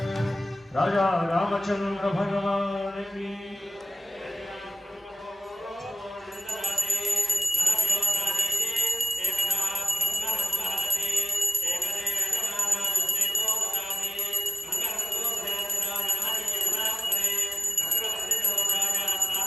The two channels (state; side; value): normal; both; correlation 0.96